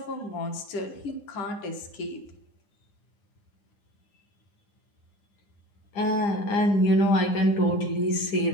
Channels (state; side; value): late; right; 9.9 ms